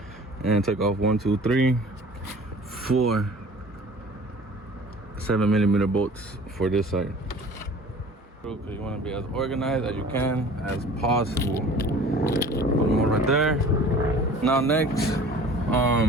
and take off 1, 2, 3, 4 7mm bolts for this side. Okay, you wanna be as organized as you can, as possible. Put them all right there. Now next,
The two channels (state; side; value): normal; both; correlation 0.45